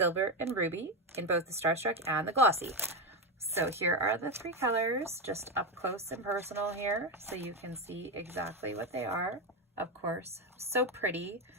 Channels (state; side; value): normal; both; correlation 0.11